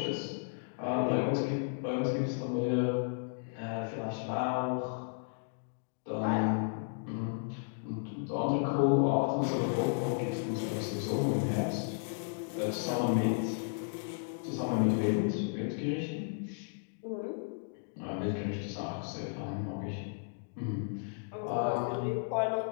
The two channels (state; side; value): silent; right; digital silence